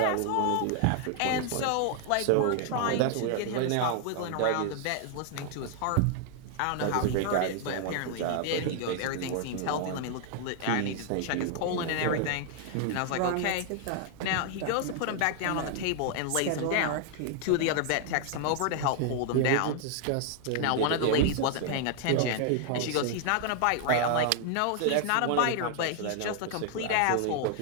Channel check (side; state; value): both; different; correlation 0.00